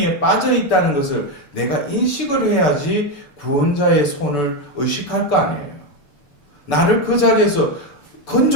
빠져 있다는 것을 내가 인식을 해야지 구원자의 손을 의식할 거 아니에요. 나를 그 자리에서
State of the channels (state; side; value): late; right; 6.8 ms